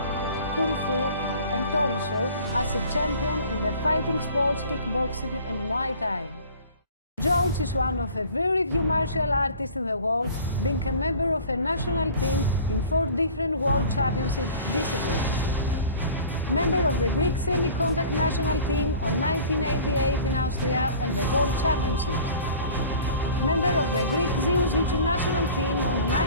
kung fu, and also as a champion in the fighting sports, kickboxing and Muay Thai. George is one of a very few martial artists in the world, being a member of a national team in 4 different world championship disciplines. Member of the Greek semi-contact national team on 1988 in Austria and the World Championships. Member of the Greek Jiu-Jitsu national team on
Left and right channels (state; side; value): inverted; both; correlation -0.45